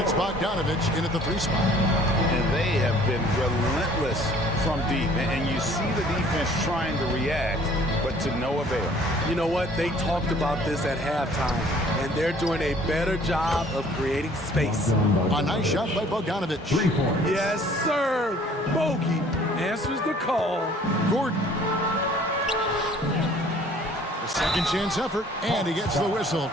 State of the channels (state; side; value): normal; both; correlation 0.55